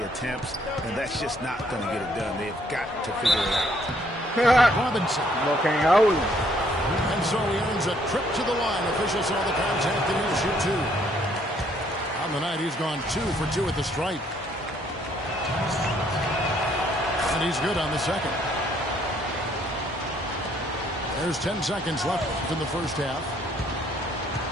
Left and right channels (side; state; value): both; normal; correlation 0.66